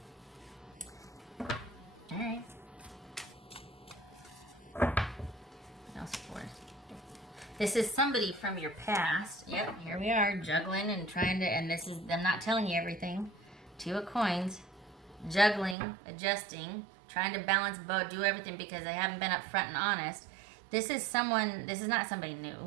All right. What else for? This is somebody from your past. Yep, here we are, juggling and trying to, and this is them not telling you everything. 2 of coins, juggling, adjusting, trying to balance both, do everything because they haven't been upfront and honest. This is not somebody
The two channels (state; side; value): drops out; left; at 15.8 s